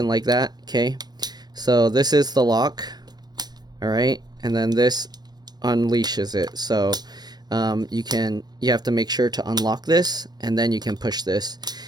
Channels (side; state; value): left; late; 0.19 ms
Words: like that, okay? So this is the lock, all right? And then this unleashes it. So you have to make sure to unlock this, and then you can push this.